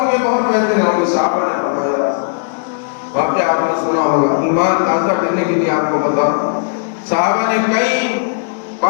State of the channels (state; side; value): silent; right; 61 dB below the other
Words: گے، بہت بہترین ہوں گے۔ صحابہ نے فرمایا، واقعہ آپ نے سنا ہوگا، ایمان تازہ کرنے کے لیے آپ کو بتا، صحابہ نے کئی